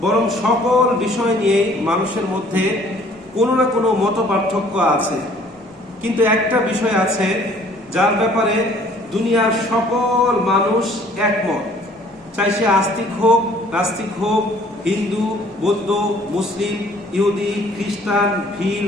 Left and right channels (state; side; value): normal; both; correlation 0.56